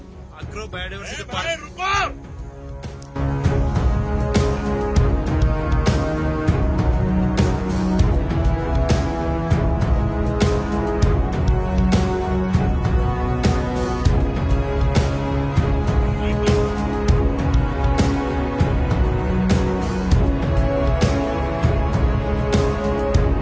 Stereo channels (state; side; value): identical; both; correlation 1.00